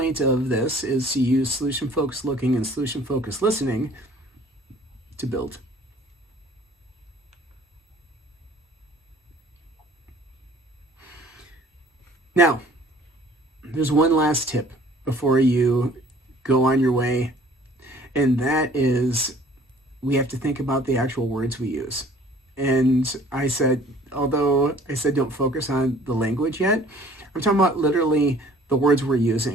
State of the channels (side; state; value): both; normal; correlation 0.54